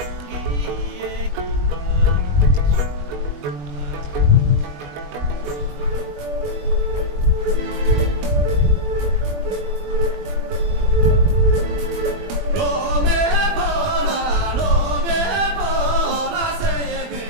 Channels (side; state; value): left; late; 21 ms